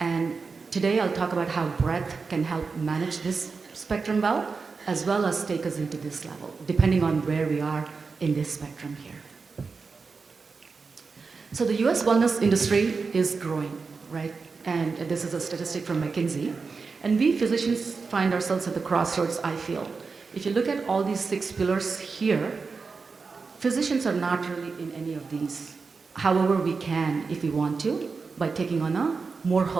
today I'll talk about how breath can help manage this spectrum well as take us into this level, depending on where we are in this spectrum here. So the US wellness industry is growing, right? And this is a statistic from McKinsey. And we physicians find ourselves at the crossroads, I feel. If you look at all these 6 pillars here, physicians are not really in any of these. However, we can, if we want to, by taking on a more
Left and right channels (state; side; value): quieter; left; 4.7 dB